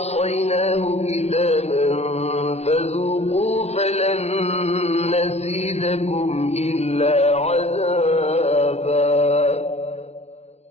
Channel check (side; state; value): right; late; 0.31 ms